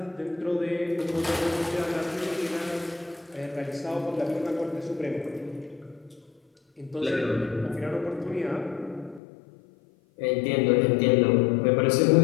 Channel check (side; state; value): right; drops out; at 9.2 s